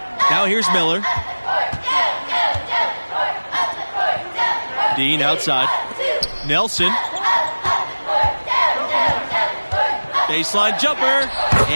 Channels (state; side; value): inverted; both; correlation -1.00